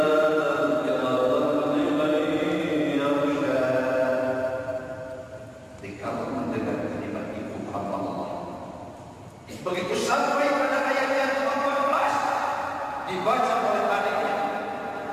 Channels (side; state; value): both; identical; correlation 1.00